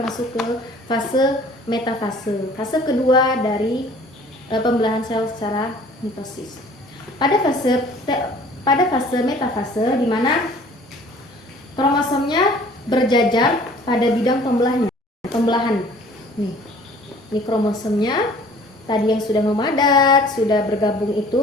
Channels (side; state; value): both; normal; correlation 0.51